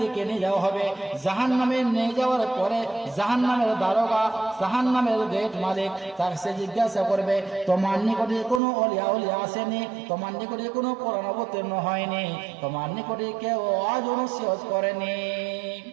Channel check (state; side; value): drops out; left; at 8.6 s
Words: দিকে নিয়ে যাওয়া হবে, জাহান্নামে নিয়ে যাওয়ার পরে জাহান্নামের দারোগা, জাহান্নামের গেট মালিক তাকে সে জিজ্ঞাসা করবে, তোমার নিকটে কোনো অলিয়া উলিয়া আসেনি, তোমার নিকটে কোনো কোরআন অবতীর্ণ হয়নি, তোমার নিকটে কেউ আজ নসিহত করেনি।